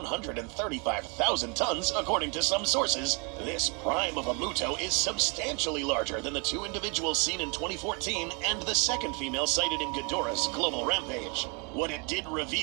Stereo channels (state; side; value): quieter; left; 33.5 dB